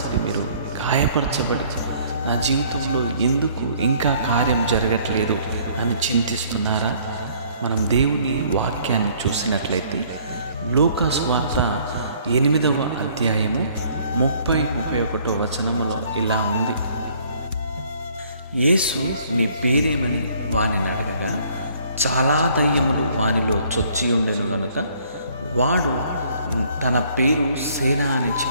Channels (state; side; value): inverted; both; correlation -0.60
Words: మీరు గాయపరచబడి నా జీవితంలో ఎందుకు ఇంకా కార్యం జరగట్లేదు అని చింతిస్తున్నారా? మనం దేవుని వాక్యాన్ని చూసినట్లయితే లూకా సువార్త 8వ అధ్యాయము 30-31 వచనములో ఇలా ఉంది. యేసు నీ పేరేమని వానిని అడగగా, చాలా దయ్యములు వానిలో చొచ్చి ఉండెను గనుక వాడు తన పేరు సేన అని